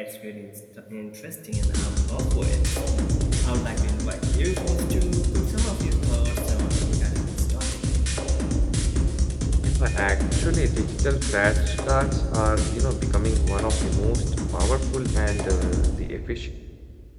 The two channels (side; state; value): both; identical; correlation 1.00